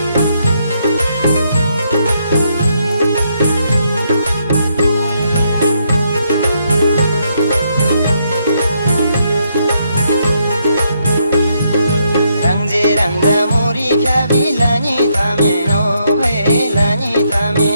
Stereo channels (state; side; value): inverted; both; correlation -0.76